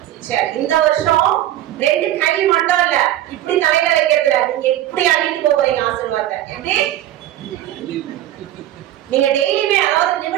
சரி, இந்த வருஷம் 2 கை மட்டும் இல்ல, இப்படி தலையில வைக்கிறதுல நீங்க இப்படி அள்ளிட்டு போறீங்க ஆசீர்வாதத்தை. எப்படி? நீங்க டெய்லியுமே, அதாவது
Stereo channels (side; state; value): left; quieter; 13.2 dB